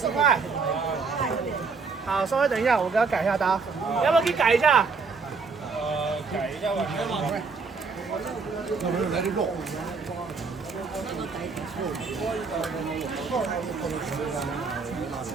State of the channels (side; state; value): left; quieter; 4.8 dB